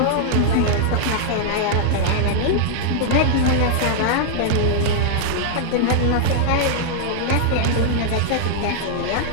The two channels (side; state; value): both; different; correlation -0.01